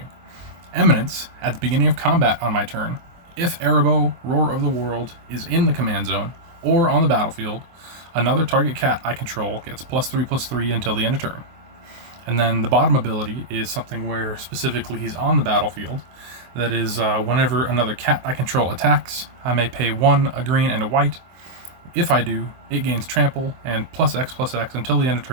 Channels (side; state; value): left; late; 23 ms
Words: Eminence, at the beginning of combat on my turn, if Arahbo, Roar of the World, is in the command zone, or on the battlefield, another target cat I control gets +3/+3 until the end of turn. And then the bottom ability is something where specifically he's on the battlefield. That is, whenever another cat I control attacks, I may pay 1, a green, and a white. If I do, it gains trample and +X/+X until the end of